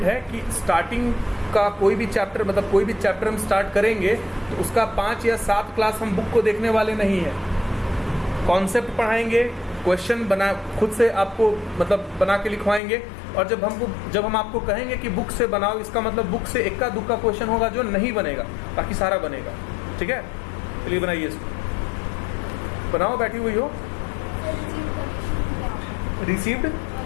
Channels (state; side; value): drops out; right; at 12.8 s